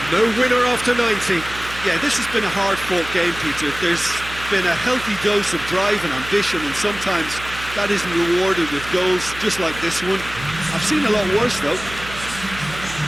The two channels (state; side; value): noise; right; hum, 13 dB below the sound